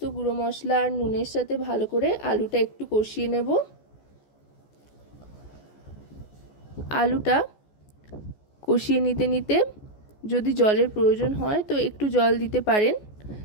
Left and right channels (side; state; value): right; late; 14 ms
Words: গুঁড়ো মশলা আর নুনের সাথে ভালো করে আলুটা একটু কষিয়ে নেব। আলুটা কষিয়ে নিতে নিতে যদি জলের প্রয়োজন হয় তো একটু জল দিতে পারেন